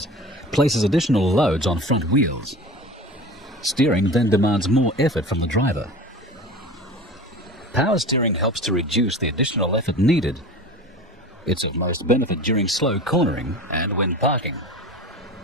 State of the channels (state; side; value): normal; both; correlation 0.35